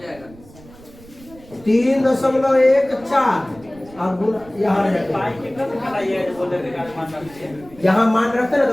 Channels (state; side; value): noise; right; rumble, 22 dB below the sound